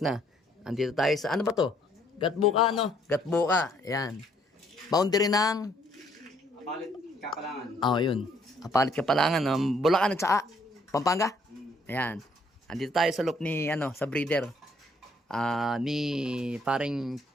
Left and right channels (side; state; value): both; normal; correlation 0.66